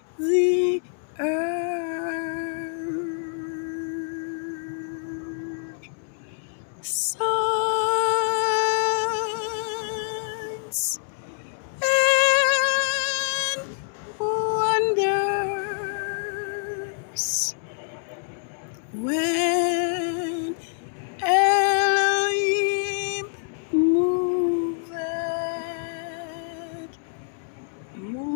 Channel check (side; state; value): right; silent; 61 dB below the other